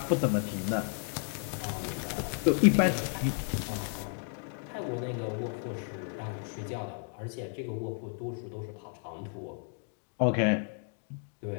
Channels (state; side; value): silent; right; 56 dB below the other